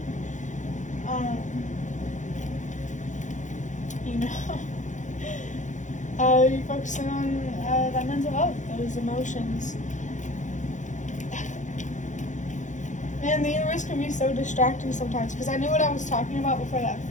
you're focusing on that mental health, those emotions. Man, the universe can be so distracting sometimes, because I knew what I was talking about before that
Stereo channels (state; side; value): late; right; 0.36 ms